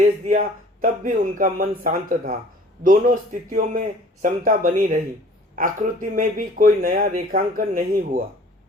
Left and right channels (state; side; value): normal; both; correlation 0.51